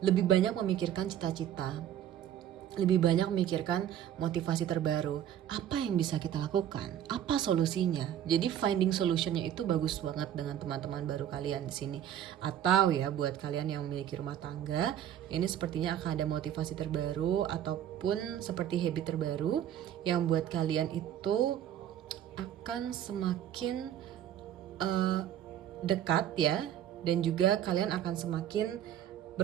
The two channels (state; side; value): quieter; left; 10.6 dB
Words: lebih banyak memikirkan cita-cita, lebih banyak memikirkan motivasi terbaru, apa yang bisa kita lakukan, apa solusinya. Jadi finding solutionnya itu bagus banget dengan teman-teman baru kalian di sini. Atau ya buat kalian yang memiliki rumah tangga, ini sepertinya akan ada motivasi terbaru ataupun seperti habit terbaru yang buat kalian itu akan semakin dekat ya, dan juga kalian akan semakin